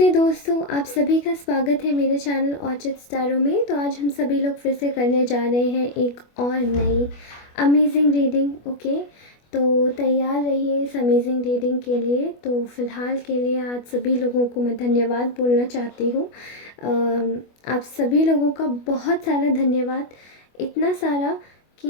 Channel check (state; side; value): late; right; 25 ms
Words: दोस्तों, आप सभी का स्वागत है मेरे चैनल ऑर्चिड स्टारों में। तो आज हम सभी लोग फिर से करने जा रहे हैं एक और नई अमेजिंग रीडिंग। ओके, तो तैयार रहिए इस अमेजिंग रीडिंग के लिए। तो फ़िलहाल के लिए आज सभी लोगों को मैं धन्यवाद बोलना चाहती हूँ। आप सभी लोगों का बहुत सारा धन्यवाद, इतना सारा